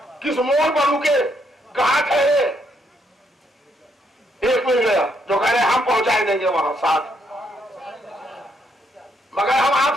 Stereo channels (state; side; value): normal; both; correlation 0.74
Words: किस मोड़ पर रुके, कहां ठहरे, एक मिल गया जो कह रहे हम पहुंचाए देंगे वहां साथ, मगर हम